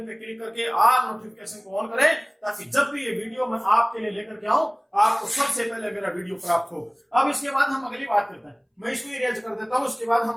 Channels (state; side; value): identical; both; correlation 1.00